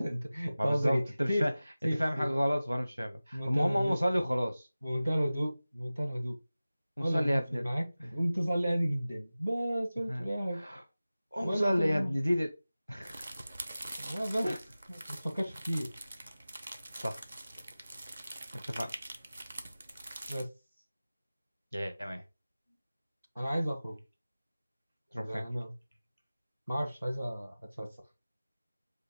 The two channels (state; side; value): inverted; both; correlation -0.97